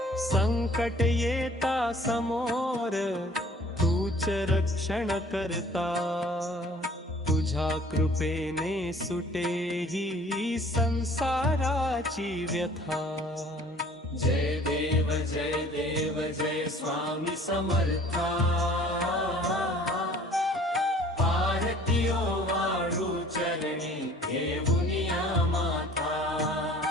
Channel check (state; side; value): normal; both; correlation 0.52